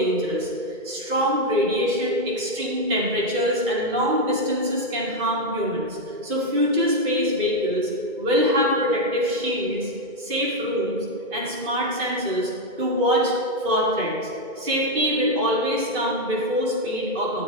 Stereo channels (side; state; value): left; late; 2.2 ms